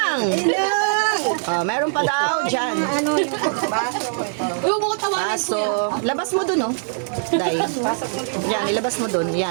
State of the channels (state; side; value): silent; left; 65 dB below the other